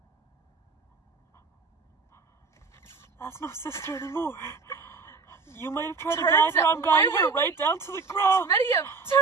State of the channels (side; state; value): left; quieter; 4.6 dB